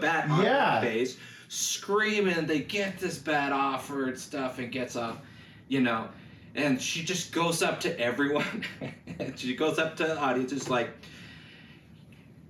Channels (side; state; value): both; identical; correlation 1.00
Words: on her face, screaming. They get this bat off her and stuff, and gets off, and she just goes up to everyone. And she goes up to the audience, just like,